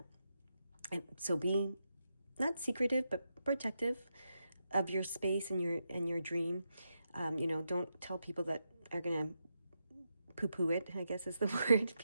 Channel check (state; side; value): inverted; both; correlation -0.84